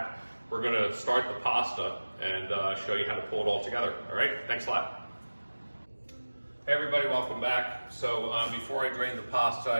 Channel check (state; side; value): inverted; both; correlation -1.00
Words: we're going to start the pasta and show you how to pull it all together. All right, thanks a lot. Hey everybody, welcome back. So before I drained the pasta,